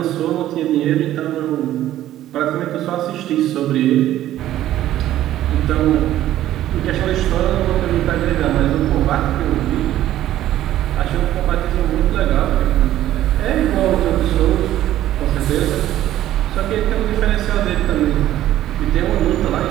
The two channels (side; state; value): left; quieter; 13.2 dB